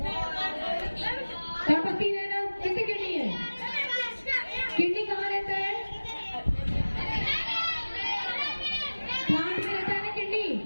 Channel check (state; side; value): inverted; both; correlation -1.00